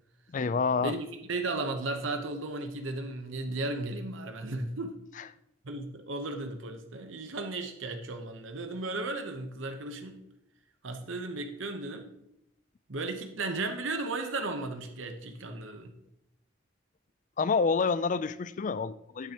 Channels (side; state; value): both; normal; correlation 0.08